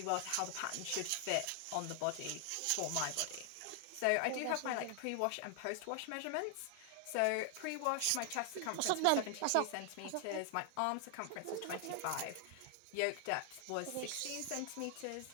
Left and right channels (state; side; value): different; both; correlation 0.00